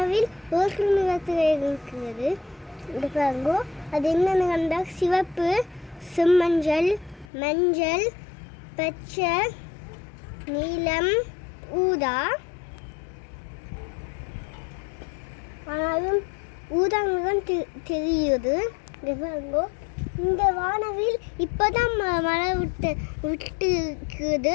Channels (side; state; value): right; drops out; at 7.3 s